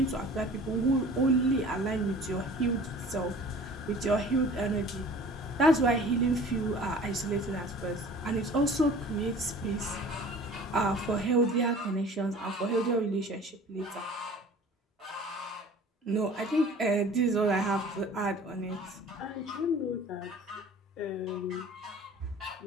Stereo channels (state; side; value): normal; both; correlation 0.45